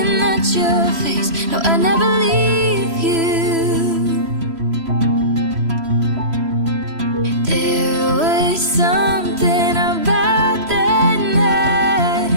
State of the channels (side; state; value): left; late; 3.0 ms